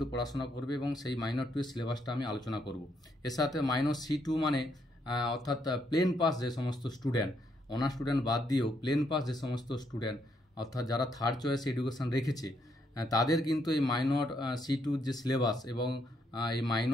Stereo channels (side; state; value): both; normal; correlation 0.75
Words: পড়াশোনা করবে এবং সেই মাইনর 2 এর সিলেবাসটা আমি আলোচনা করব। এর সাথে মাইনর C2 মানে অর্থাৎ প্লেন পাস যে সমস্ত স্টুডেন্ট, অনার্স স্টুডেন্ট বাদ দিয়েও প্লেন পাস যে সমস্ত স্টুডেন্ট, অর্থাৎ যারা থার্ড চয়েস এডুকেশান রেখেছে, তাদের কিন্তু এই মাইনর C2 যে সিলেবাস এবং এই